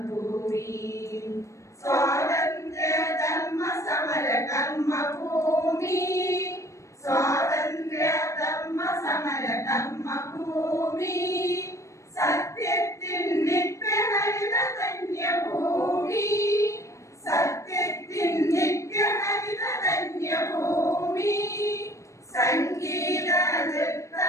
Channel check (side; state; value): right; late; 0.15 ms